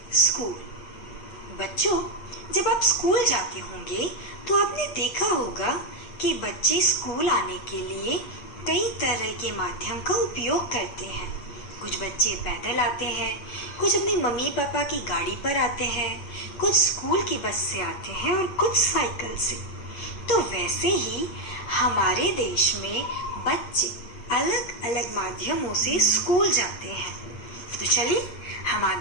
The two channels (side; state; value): right; late; 8.5 ms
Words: स्कूल। बच्चों, जब आप स्कूल जाते होंगे तो आपने देखा होगा कि बच्चे स्कूल आने के लिए कई तरह के माध्यम का उपयोग करते हैं। कुछ बच्चे पैदल आते हैं, कुछ अपनी मम्मी पापा की गाड़ी पर आते हैं, कुछ स्कूल की बस से आते हैं और कुछ साइकिल से। तो वैसे ही हमारे देश में बच्चे अलग अलग माध्यमों से स्कूल जाते हैं। तो चलिए हम